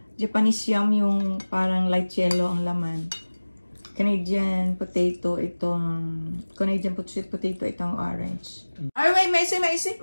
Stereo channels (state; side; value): inverted; both; correlation -1.00